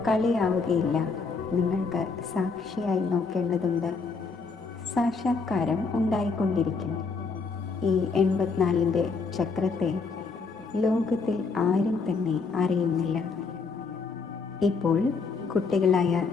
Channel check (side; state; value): right; quieter; 4.6 dB